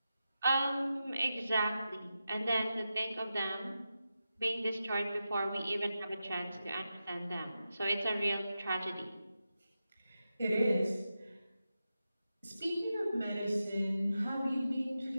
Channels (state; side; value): inverted; both; correlation -0.90